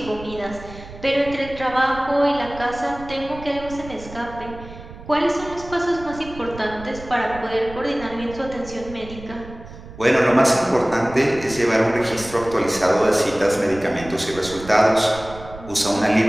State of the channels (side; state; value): right; noise; rumble, 15 dB below the sound